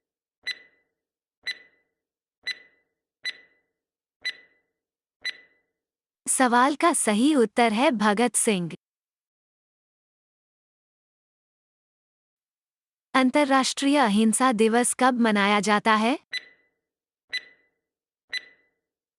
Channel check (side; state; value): both; identical; correlation 1.00